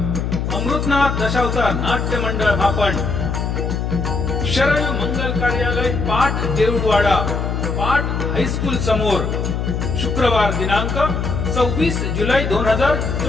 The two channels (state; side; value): noise; left; hum, 1 dB below the sound